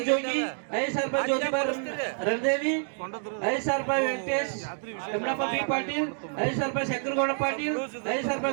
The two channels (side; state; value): left; silent; 59 dB below the other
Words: ಜೋಗಿ. 5,000 ರೂಪಾಯಿ ಜ್ಯೋತಿಬಾ ರಣದೇವಿ. 5,000 ರೂಪಾಯಿ ವೆಂಕಟೇಶ್ ಯಮನಪ್ಪ ಬಿ ಪಾಟೀಲ್. 5,000 ರೂಪಾಯಿ ಶಂಕರಗೌಡ ಪಾಟೀಲ್. 5,000